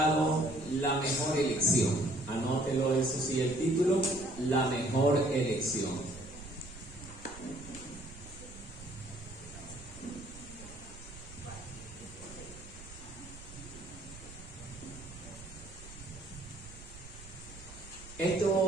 La mejor elección. Anótelo, eso sí, el título, La mejor elección.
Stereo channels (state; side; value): noise; right; rumble, 16 dB below the sound